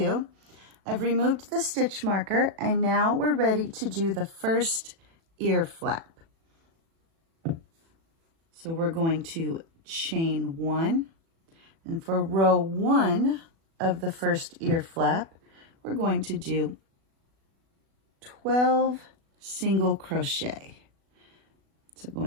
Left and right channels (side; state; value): left; late; 36 ms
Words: I've removed the stitch marker, and now we're ready to do the first ear flap. So we're going to chain 1, and for row 1 of the first ear flap, we're going to do 12 single crochet. So